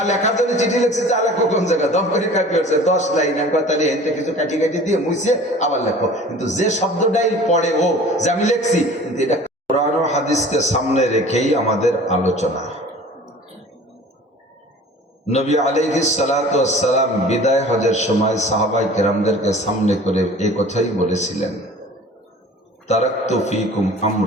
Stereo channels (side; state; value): both; normal; correlation 0.44